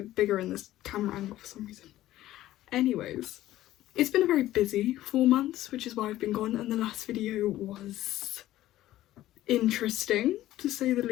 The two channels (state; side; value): quieter; right; 14.6 dB